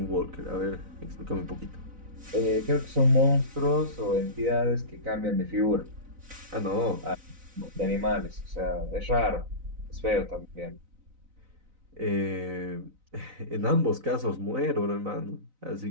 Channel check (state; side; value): late; left; 3.9 ms